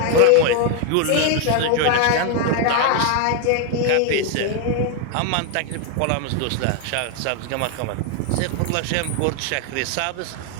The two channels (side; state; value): both; different; correlation 0.01